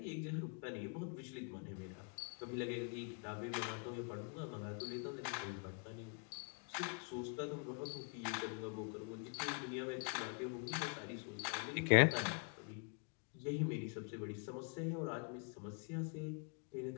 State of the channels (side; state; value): right; quieter; 39.3 dB